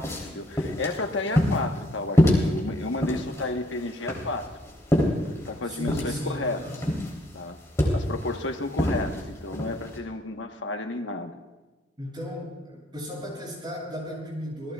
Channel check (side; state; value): both; normal; correlation 0.66